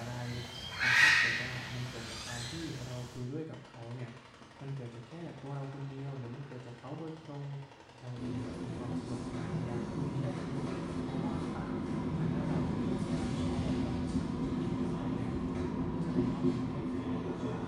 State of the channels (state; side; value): identical; both; correlation 1.00